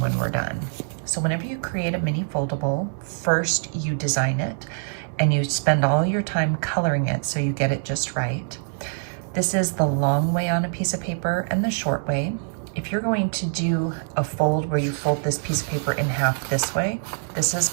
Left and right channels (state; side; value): silent; left; digital silence